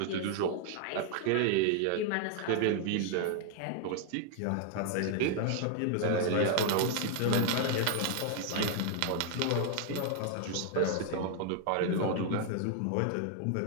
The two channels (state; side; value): different; both; correlation 0.00